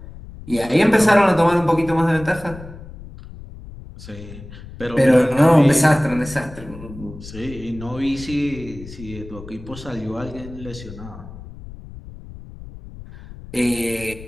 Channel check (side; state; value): left; noise; rumble, 15 dB below the sound